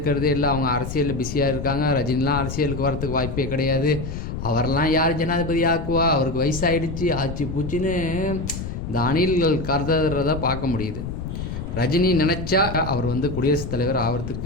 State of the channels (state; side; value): noise; left; rumble, 6 dB below the sound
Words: இல்லை, அவங்க அரசியலில் பிஸியாக இருக்காங்க, ரஜினிலாம் அரசியலுக்கு வரத்துக்கு வாய்ப்பே கிடையாது, அவரெல்லாம் யார் ஜனாதிபதி ஆக்குவா, அவருக்கு வயசாகிடுச்சு ஆச்சு பூச்சின்னு இந்த அணில்கள் கருதுறதை பார்க்க முடியுது. ரஜினி நினச்சா அவர் குடியரசுத் தலைவர்